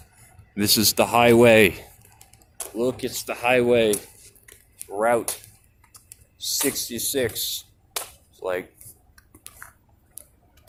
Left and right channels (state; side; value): identical; both; correlation 1.00